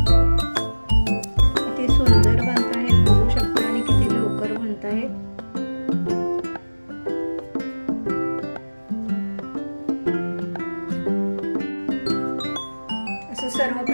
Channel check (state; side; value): inverted; both; correlation -1.00